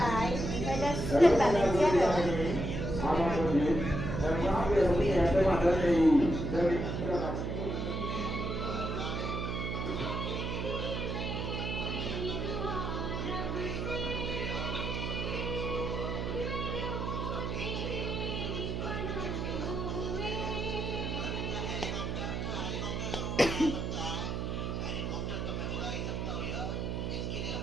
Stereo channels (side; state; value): right; noise; hum, 2 dB below the sound